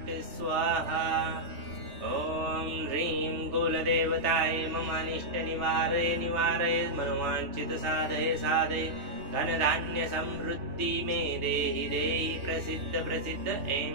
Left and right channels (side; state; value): left; late; 3.2 ms